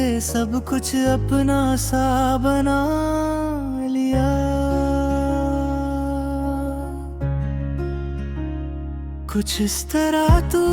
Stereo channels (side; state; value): both; identical; correlation 1.00